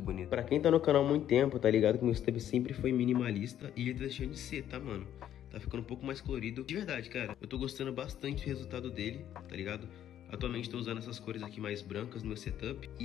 bonito. Pra quem tá no canal há muito tempo, tá ligado que meu setup sempre foi minimalista e ele tá deixando de ser, tá, mano? Tá ficando um pouco mais colorido. De verdade, cara, eu tô gostando bastante do resultado dele, tá ligado? Atualmente tô usando essas cores aqui mais brancas no meu setup.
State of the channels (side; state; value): right; quieter; 10.9 dB